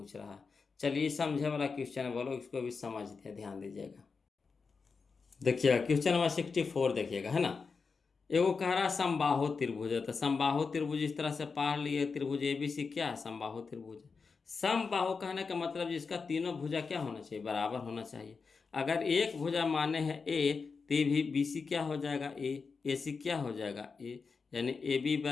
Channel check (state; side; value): quieter; right; 4.9 dB